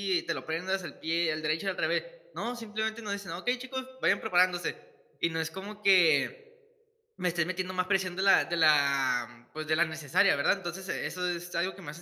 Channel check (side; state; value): both; identical; correlation 1.00